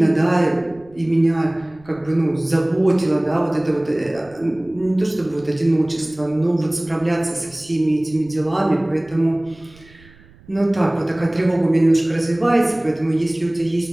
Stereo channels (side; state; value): right; noise; rumble, 26 dB below the sound